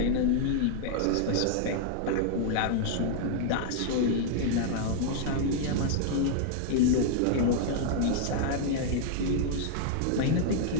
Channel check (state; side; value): different; both; correlation -0.01